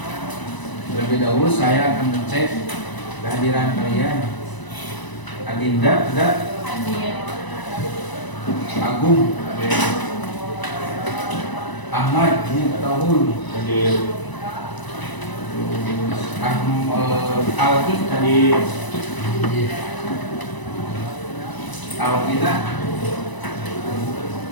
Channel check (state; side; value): late; right; 1.0 ms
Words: Terlebih dahulu saya akan mengecek kehadiran kalian. Adinda, tidak? Agung, Ahmad, Tahul, Alfi tadi, Alvina,